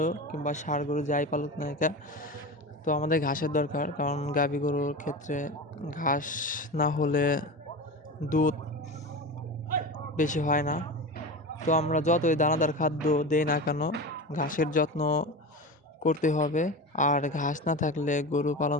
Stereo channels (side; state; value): both; normal; correlation 0.27